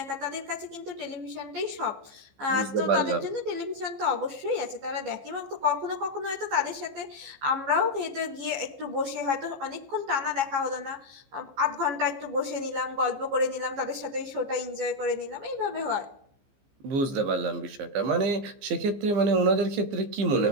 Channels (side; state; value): left; late; 15 ms